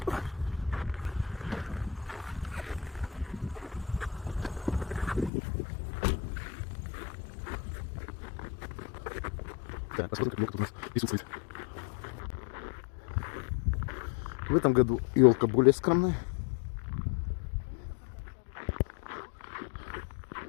Так, посмотрим, как елка тут у нас присутствует. В этом году елка более скромная.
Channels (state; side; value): drops out; right; at 5.3 s